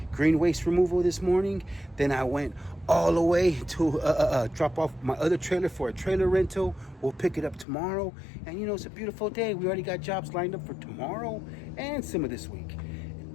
green waste removal this morning. Then I went all the way to drop off my other trailer for a trailer rental. We'll pick it up tomorrow. And, you know, it's a beautiful day. We already got jobs lined up for tomorrow and some of this week.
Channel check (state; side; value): drops out; right; at 7.7 s